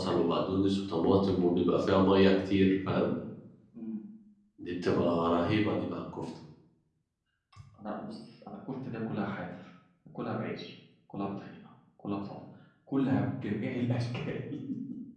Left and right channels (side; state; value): both; identical; correlation 1.00